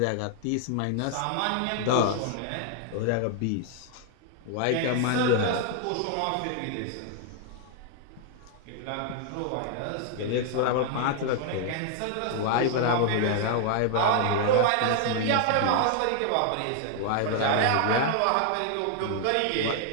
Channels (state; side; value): different; both; correlation 0.00